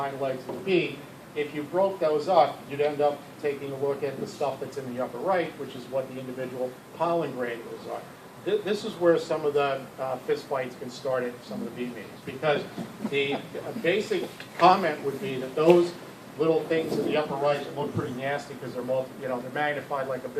legs of the bee. If you broke those up, you'd end up taking a look at the stuff that's in the upper right, which is what the individual pollen granules are. this is where some of the fist fights can start at some of the bee meetings, because the basic comment would be that those little things in the upper right that look pretty nasty because they're magnified like a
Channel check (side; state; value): both; identical; correlation 1.00